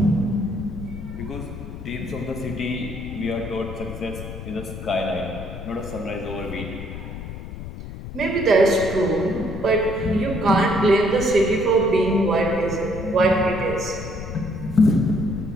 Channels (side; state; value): left; noise; rumble, 10 dB below the sound